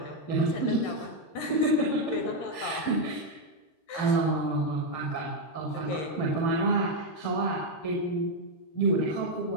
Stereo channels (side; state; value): right; late; 13 ms